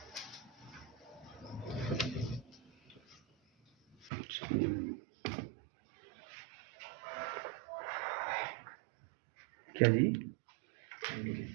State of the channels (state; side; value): drops out; left; at 4.1 s